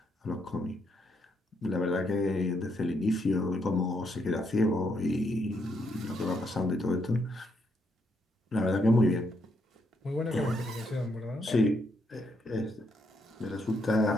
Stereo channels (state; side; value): normal; both; correlation 0.76